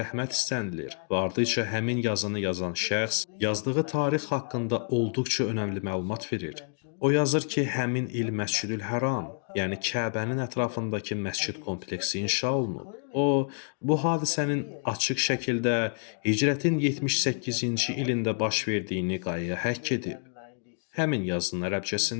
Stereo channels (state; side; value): silent; right; 57 dB below the other